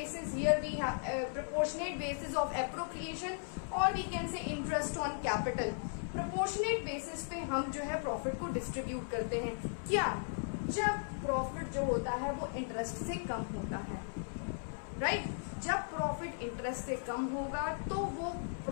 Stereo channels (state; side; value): silent; right; 53 dB below the other